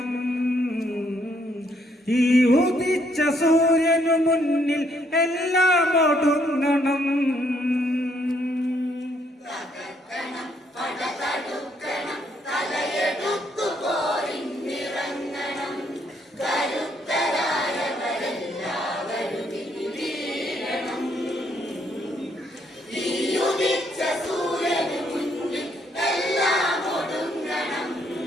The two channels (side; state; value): both; normal; correlation 0.71